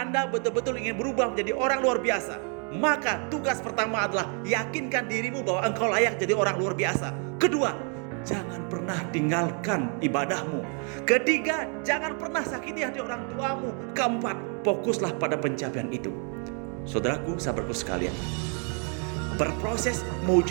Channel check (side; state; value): left; quieter; 39.9 dB